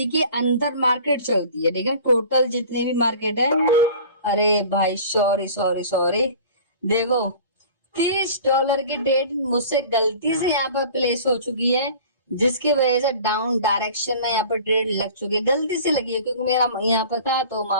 के अंदर मार्केट चलती है, ठीक है। टोटल जितने भी मार्केट है, अरे भाई सॉरी सॉरी सॉरी, देखो $30 की ट्रेड मुझसे गलती से यहाँ पर प्लेस हो चुकी है, जिसकी वजह से डाउन डायरेक्शन में यहाँ पर ट्रेड लग चुकी है, गलती से लगी है, क्योंकि मेरा यहाँ पर था तो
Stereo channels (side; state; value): both; inverted; correlation -0.43